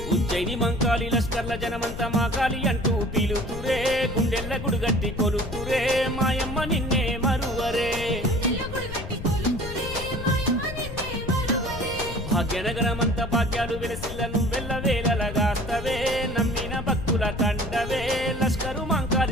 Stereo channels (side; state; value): left; noise; rumble, 9 dB below the sound